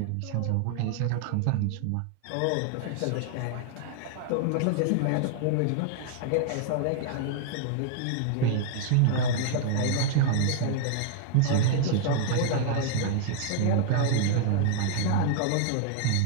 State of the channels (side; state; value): both; different; correlation 0.00